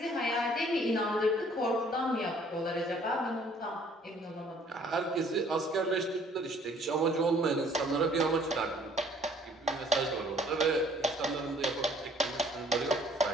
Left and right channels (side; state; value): both; normal; correlation 0.58